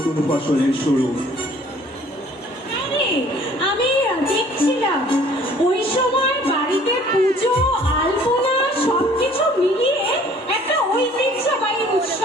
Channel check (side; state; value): both; normal; correlation 0.54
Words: ফসলের শুরু। আরে আমি দেখছিলাম ওই সময় বাড়িতে পুজো আলপনা সবকিছু মিলিয়ে একটা ঐতিহ্যবাহী